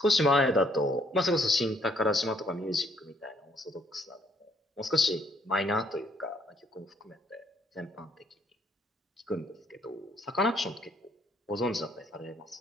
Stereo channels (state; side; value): normal; both; correlation 0.67